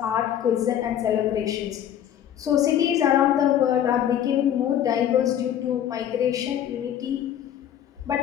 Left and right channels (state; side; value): quieter; right; 10.3 dB